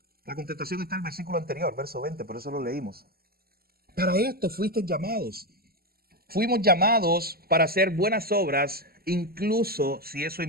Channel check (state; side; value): late; left; 0.45 ms